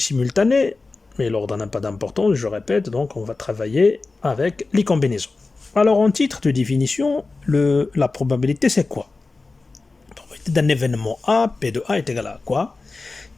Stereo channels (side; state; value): right; quieter; 3.7 dB